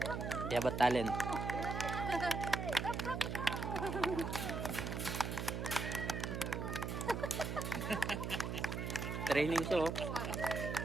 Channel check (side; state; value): right; noise; hum, 3 dB below the sound